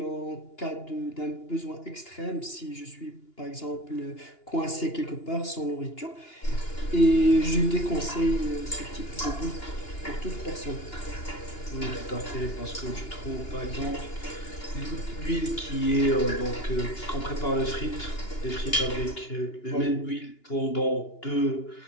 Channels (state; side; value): late; right; 2.9 ms